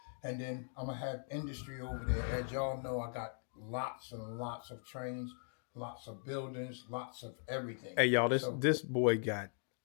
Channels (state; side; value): silent; right; 51 dB below the other